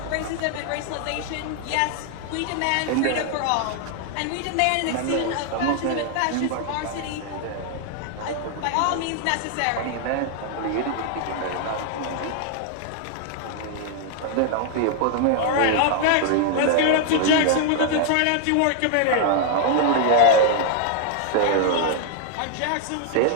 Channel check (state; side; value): different; both; correlation 0.00